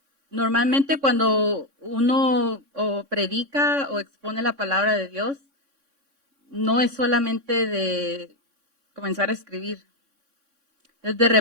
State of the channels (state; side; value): late; left; 3.6 ms